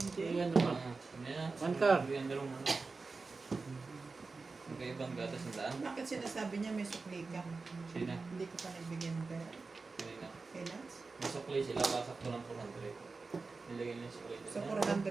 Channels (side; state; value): left; quieter; 4.1 dB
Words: Ayan naman. One car. Yung dalawang manok. Magkaibang gatos ng daan. Bakit sinasabi niya may sukli ka? Sina? Hindi ko pa nagbigyan ng pera. Kanina. Kay Lance? Masukli sila. Kasakto ng 400. Nilagay nila yung sukli. So